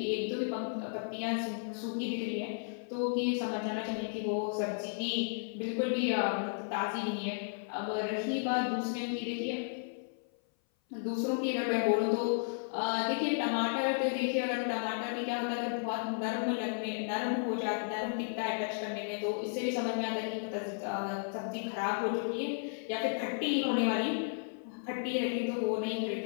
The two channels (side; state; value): right; silent; 55 dB below the other